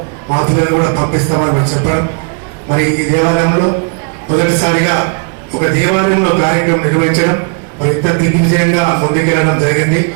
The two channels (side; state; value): left; quieter; 38.0 dB